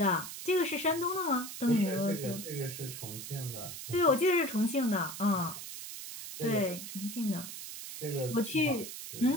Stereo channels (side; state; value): right; noise; hiss, 9 dB below the sound